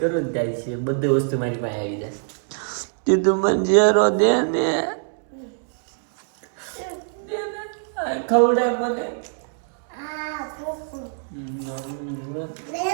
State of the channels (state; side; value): silent; left; 63 dB below the other